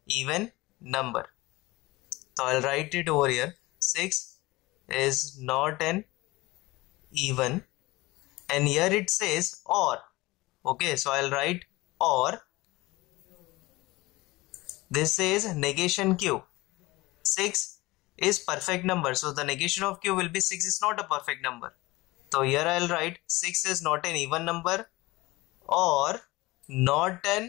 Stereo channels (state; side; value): quieter; right; 20.8 dB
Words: even number. So I'll write it over here. 6 is not an even, and here it says OR. Okay, so I'll write OR. This says negation Q. 6 is perfect number, so the negation of Q will be 6 is not a perfect number. So here I'll write 6 is not an even number or not